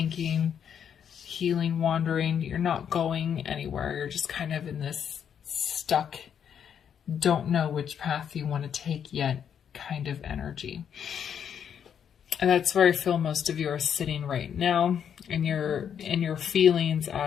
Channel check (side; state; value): right; quieter; 8.3 dB